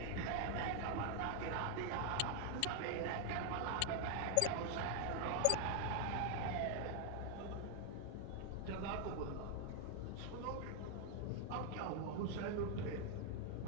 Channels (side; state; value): both; different; correlation 0.00